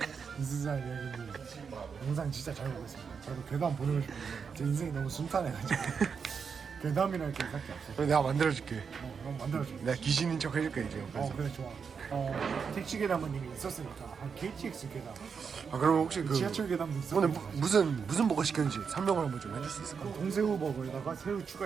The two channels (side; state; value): left; quieter; 6.1 dB